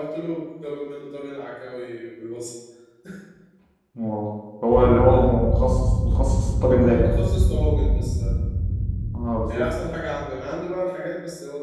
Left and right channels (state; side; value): identical; both; correlation 1.00